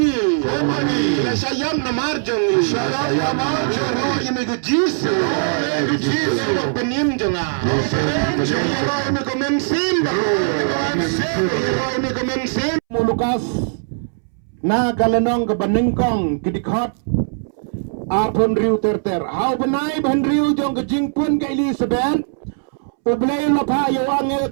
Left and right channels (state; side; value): silent; left; 66 dB below the other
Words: Nasayam na marjong. Royani ko jisu. Penim jonga. Royani ko memsim. Royani ko memsim. Mulukas na kalanong kabaningkong kidikot apon riu terter hau benai ban riu jong kejing pun ke Elizabeth ublay lapa yo angel